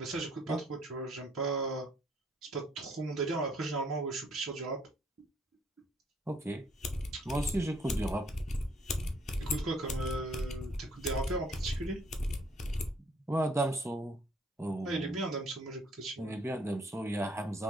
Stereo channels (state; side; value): normal; both; correlation 0.64